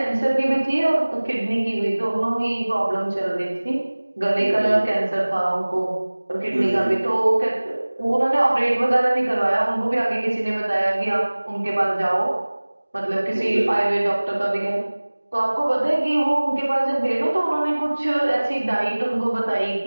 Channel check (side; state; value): both; inverted; correlation -1.00